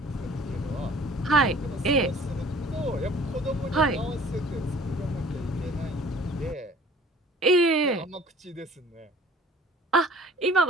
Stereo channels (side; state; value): both; normal; correlation 0.50